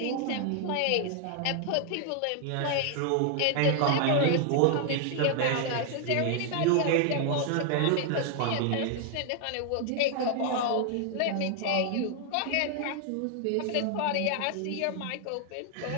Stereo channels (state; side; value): different; both; correlation 0.00